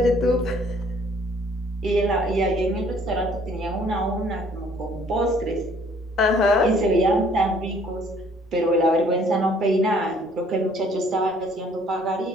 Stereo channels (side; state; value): both; normal; correlation 0.59